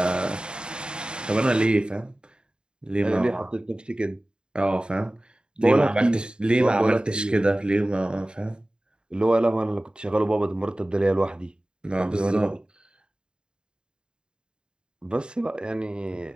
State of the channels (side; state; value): left; late; 0.050 ms